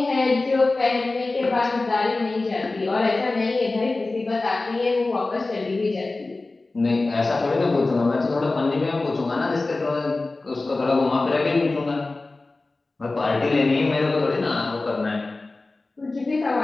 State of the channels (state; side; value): quieter; right; 3.3 dB